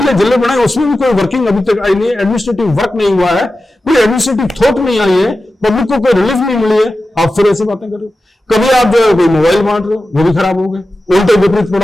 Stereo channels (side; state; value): both; normal; correlation 0.93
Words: जिले बनाए उसमें भी कोई वर्किंग अभी तक आई नहीं है, एडमिनिस्ट्रेटिव वर्क नहीं हुआ है, कोई एडमिनिस्ट्रेटिव थॉट नहीं आई है, पब्लिक को कोई रिलीफ नहीं मिली है, आप फिर ऐसी बातें कर रहे हो। कभी आप जो है कोई मोबाइल बांट रहे हो, वो भी खराब हो गए, उल्टे विपरीत